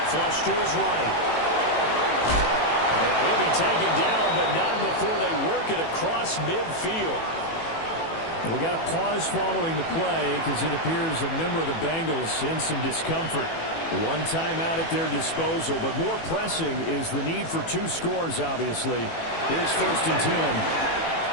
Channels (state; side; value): late; right; 18 ms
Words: Flush to his right. And he'll be taken down, but not before they work it across midfield. We got a pause following the play because it appears a member of the Bengals in some discomfort. 1 timeout at their disposal, but more pressing is the need for 2 scores, obviously. Here's 1st and 10.